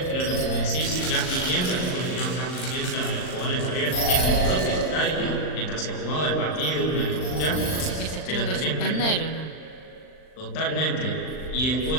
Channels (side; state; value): right; late; 39 ms